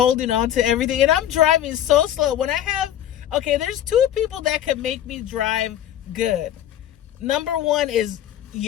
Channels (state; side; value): quieter; right; 11.4 dB